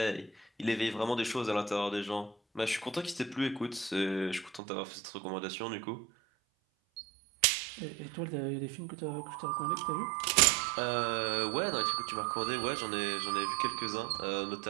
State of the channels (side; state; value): left; drops out; at 4.6 s